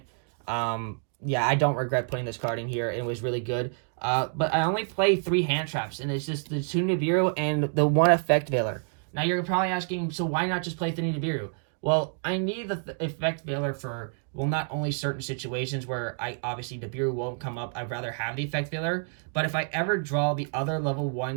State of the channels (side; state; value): left; silent; 57 dB below the other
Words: Yeah, I don't regret putting this card in here. It was really good. But I only play 3 hand traps, and it's just the 2 Nibiru and the 1 Effect Veiler. Now, you're probably asking, so why not just play 3 Nibiru? Well, I need the Effect Veiler for, well, not only certain situations where obviously Nibiru won't come up, I'd rather have the Effect Veiler, but if I ever draw the other level